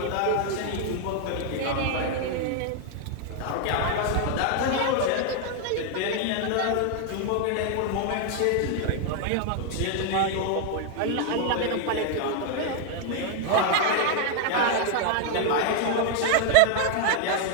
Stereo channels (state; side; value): different; both; correlation 0.00